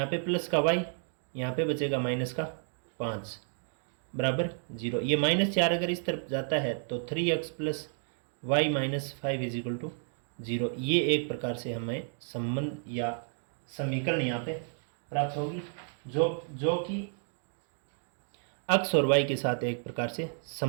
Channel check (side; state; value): left; silent; 55 dB below the other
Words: पे प्लस का y, यहाँ पे बचेगा माइनस का 5 बराबर 0। ये -4 अगर इस तरफ जाता है तो 3x + y - 5 = 0। ये एक प्रकार से हमें संबंध या समीकरण यहाँ पे प्राप्त होगी जो कि x और y के साथ एक प्रकार से